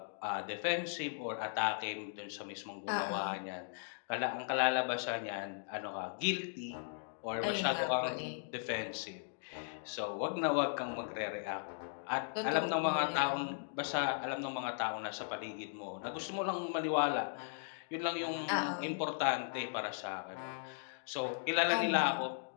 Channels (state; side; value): silent; right; digital silence